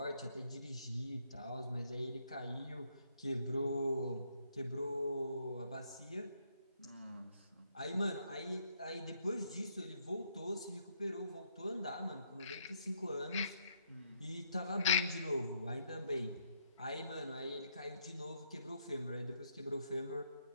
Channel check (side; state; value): both; inverted; correlation -0.73